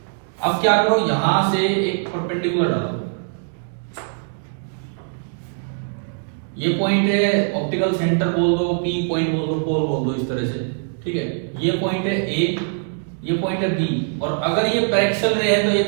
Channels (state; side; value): silent; left; digital silence